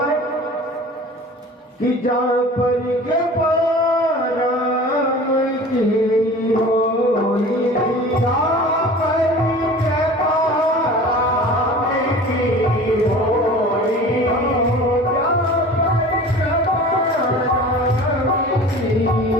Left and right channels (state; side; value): normal; both; correlation 0.40